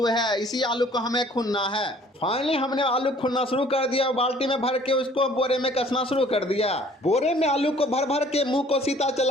है, इसी आलू को हमें खुनना है। फाइनली हमने आलू खुनना शुरू कर दिया और बाल्टी में भर के उसको बोरे में कसना शुरू कर दिया। बोरे में आलू को भर भर के मुंह को सीता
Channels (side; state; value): both; normal; correlation 0.55